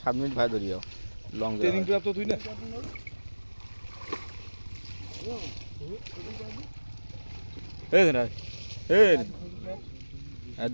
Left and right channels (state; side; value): inverted; both; correlation -1.00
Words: 7 মিনিট ভাই ধরিও লং ট্রেনিং প্রাপ্ত তুই না এই না এই আর